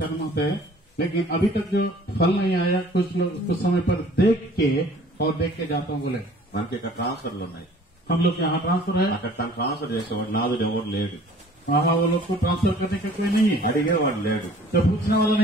होता है, लेकिन अभी तक जो फल नहीं आया, कुछ लोग कुछ समय पर देख के जाता हूँ बोले మనకి ఇక్కడ ట్రాన్స్ఫర్లు ఉన్నాయి, हम लोग यहाँ ट्रांसफर है, అక్కడ తను ట్రాన్స్ఫర్ చేసేవాడు నాదుడు ఎవరు లేడు, वहाँ वो लोग को ट्रांसफर करने का कोई नहीं है, అడిగేవాడు లేడు, तो पूछने वाला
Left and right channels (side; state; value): both; normal; correlation 0.52